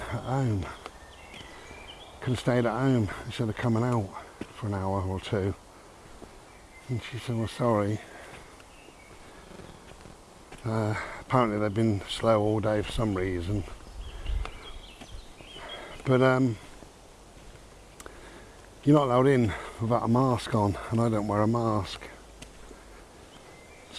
at home? Could have stayed at home instead of coming out for an hour or two. And she said, well, sorry. Apparently they've been slow all day for some reason. But you're not allowed in without a mask on, and I don't wear a mask.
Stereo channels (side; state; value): both; identical; correlation 1.00